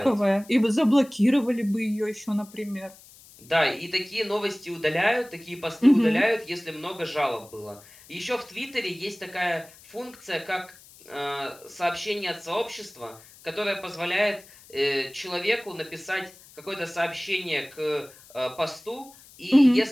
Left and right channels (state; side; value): noise; left; hiss, 23 dB below the sound